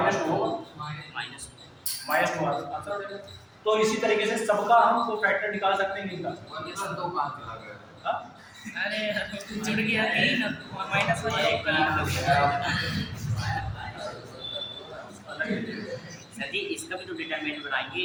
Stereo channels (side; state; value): both; identical; correlation 1.00